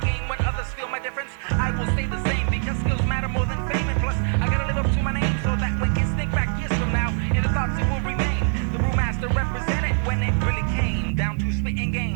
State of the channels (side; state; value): left; silent; 60 dB below the other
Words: gain when others feel my difference. I will stay the same, because skills matter more than fame, and plus I gotta live up to my name, so that when kids think back years from now, in the thoughts it will remain. The brewmaster represented when it really came down to spitting